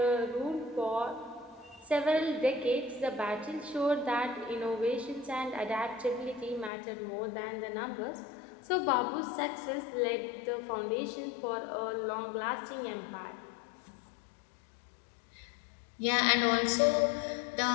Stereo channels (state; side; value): drops out; right; at 6.7 s